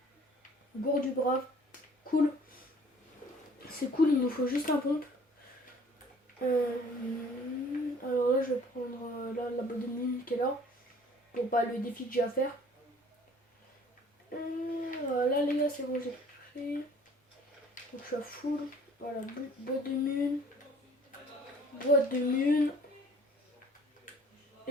Gourde du brave. Cool. C'est cool, il nous faut juste un pompe. Alors là, je vais prendre la boîte de mine qui est là. Pour pas le défi que j'ai à faire. Là, les gars, c'est bon, j'ai pris. Donc je suis à full. Voilà, boîte de mine. Boîte de mine.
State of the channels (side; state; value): both; normal; correlation 0.53